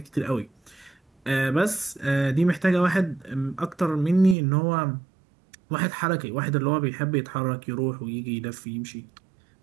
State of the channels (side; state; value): left; drops out; at 4.4 s